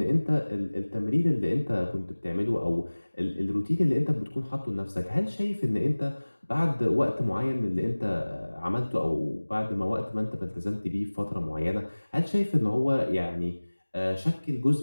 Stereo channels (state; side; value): inverted; both; correlation -1.00